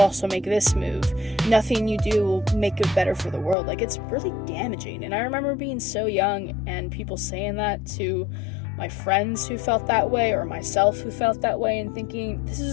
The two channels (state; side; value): drops out; right; at 3.6 s